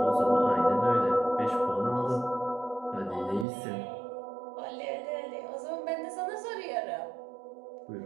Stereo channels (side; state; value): left; drops out; at 3.5 s